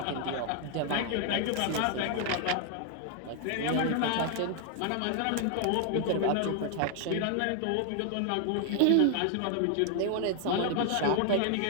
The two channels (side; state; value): both; different; correlation 0.00